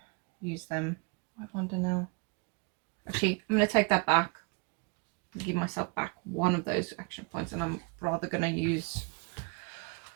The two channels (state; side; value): quieter; left; 31.9 dB